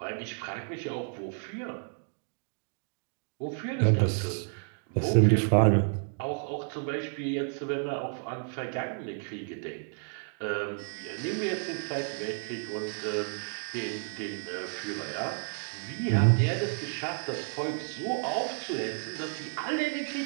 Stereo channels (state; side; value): silent; left; 55 dB below the other